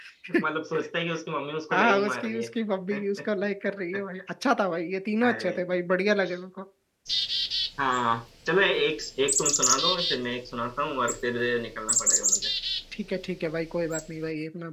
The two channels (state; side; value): identical; both; correlation 1.00